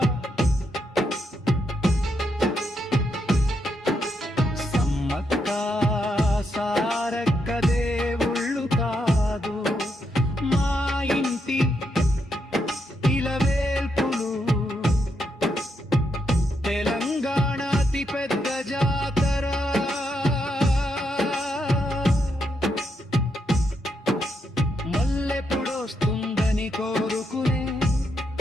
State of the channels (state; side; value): normal; both; correlation 0.80